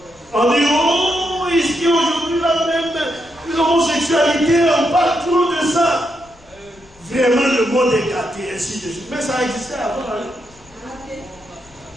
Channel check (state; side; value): noise; left; rumble, 27 dB below the sound